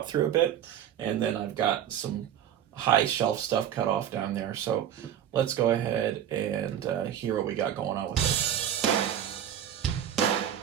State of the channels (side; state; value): left; quieter; 10.1 dB